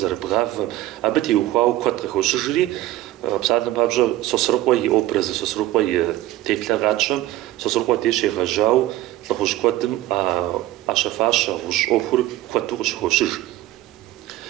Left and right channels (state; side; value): quieter; left; 15.5 dB